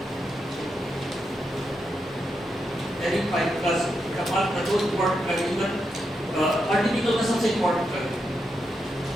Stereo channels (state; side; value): normal; both; correlation 0.84